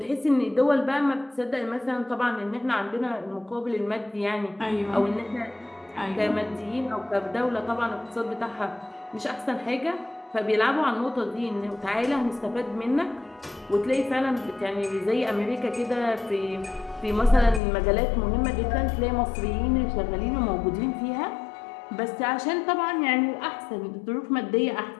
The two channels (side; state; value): right; drops out; at 17.6 s